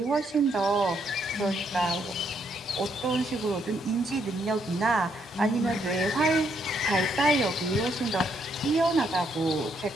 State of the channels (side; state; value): both; normal; correlation 0.74